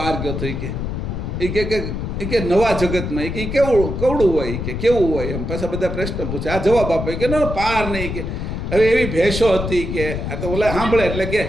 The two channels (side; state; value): left; noise; rumble, 4 dB below the sound